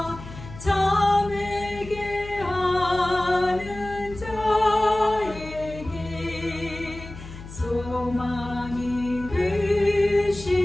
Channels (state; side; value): noise; left; hum, 14 dB below the sound